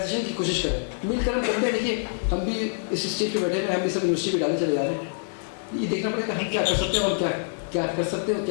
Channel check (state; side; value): silent; right; digital silence